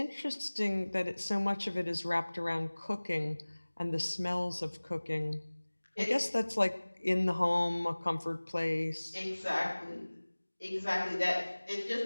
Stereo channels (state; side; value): inverted; both; correlation -1.00